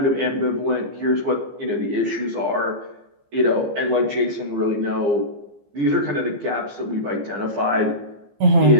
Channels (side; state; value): left; late; 15 ms